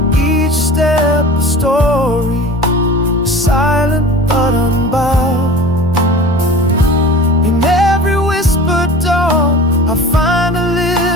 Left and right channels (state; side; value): normal; both; correlation 0.39